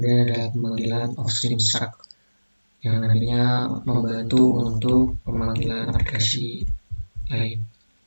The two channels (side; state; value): both; inverted; correlation -1.00